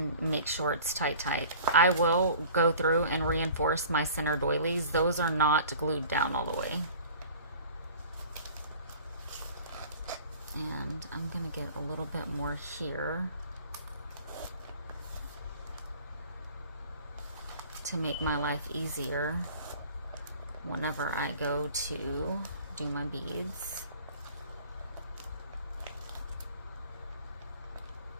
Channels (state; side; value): inverted; both; correlation -0.46